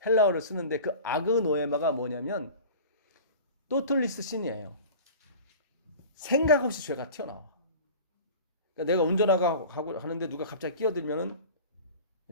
헬라어를 쓰는데 그 아그노에마가 뭐냐면 또틀리스 신이에요. 생각 없이 죄가 튀어나와. 그러니까 내가 운전하고 하는데 누가 갑자기 끼어들면은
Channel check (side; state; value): both; inverted; correlation -0.37